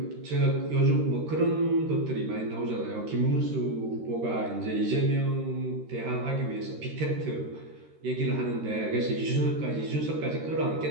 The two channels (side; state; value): left; late; 13 ms